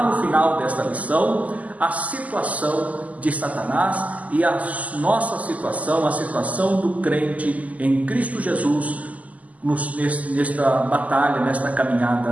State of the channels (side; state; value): left; late; 0.074 ms